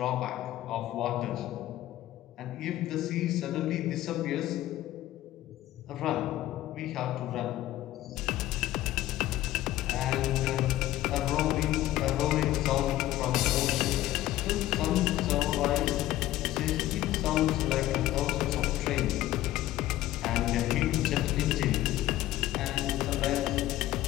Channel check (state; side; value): quieter; right; 14.9 dB